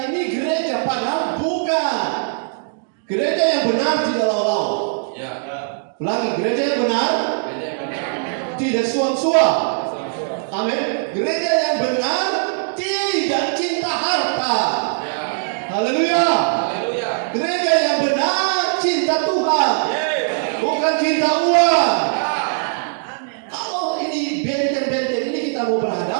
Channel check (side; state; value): left; silent; digital silence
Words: ini gereja, padahal bukan. Gereja yang benar tidak lawan-lawan. Ya. Ulangi, gereja yang benar tidak suam-suam. Amin. Gereja yang benar tidak cinta harta. Haleluya. Gereja yang benar cinta Tuhan, bukan cinta uang. Kalau ini benteng-benteng ini kita mau